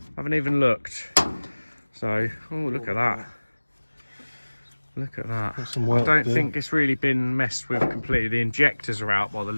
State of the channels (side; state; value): both; inverted; correlation -1.00